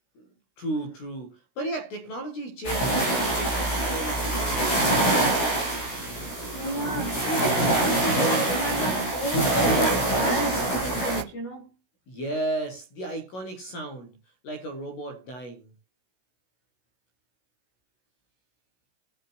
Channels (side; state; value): right; late; 16 ms